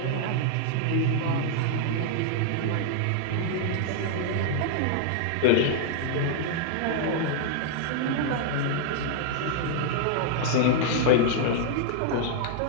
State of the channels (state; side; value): different; both; correlation -0.01